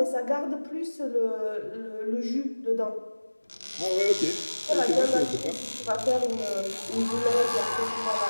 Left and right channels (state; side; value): inverted; both; correlation -1.00